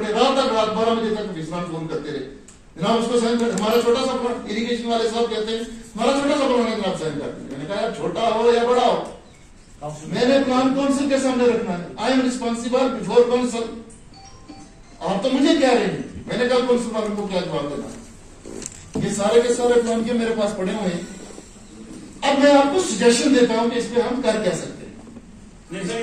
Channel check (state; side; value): identical; both; correlation 1.00